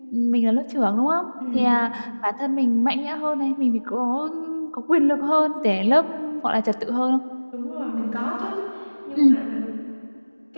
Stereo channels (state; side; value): inverted; both; correlation -1.00